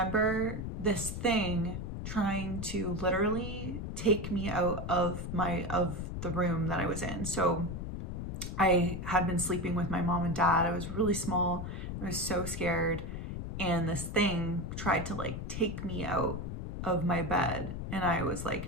this thing trying to literally take me out of the room that I was in. So I had been sleeping with my mom and dad. I was really small. I was so scared. And this thing tried to like take me out of my bed. And I was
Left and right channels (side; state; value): left; noise; rumble, 5 dB below the sound